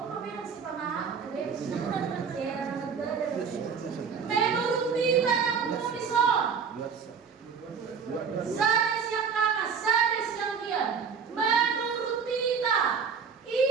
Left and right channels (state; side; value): quieter; left; 6.2 dB